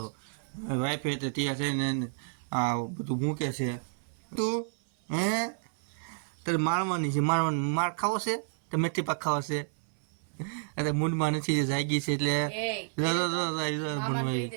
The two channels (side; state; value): left; silent; 58 dB below the other